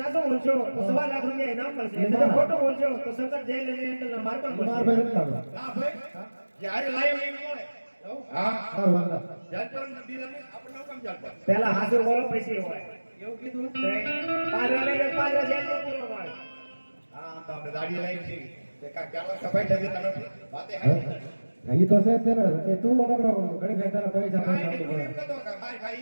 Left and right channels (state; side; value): inverted; both; correlation -1.00